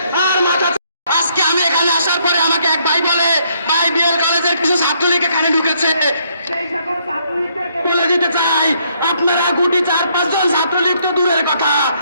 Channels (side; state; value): both; inverted; correlation -0.70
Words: আর মাথা। আজকে আমি এখানে আসার পরে আমাকে এক ভাই বলে, ভাই বিএল কলেজের কিছু ছাত্রলীগ এখানে ঢুকেছে। সেই সকল ছাত্রলীগদেরকে বলে দিতে চাই, আপনারা গুটি 4-5 জন ছাত্রলীগ তো দূরের কথা,